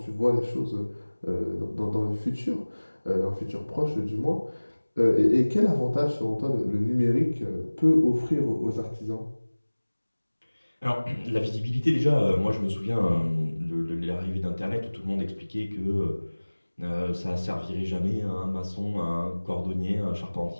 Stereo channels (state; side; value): inverted; both; correlation -1.00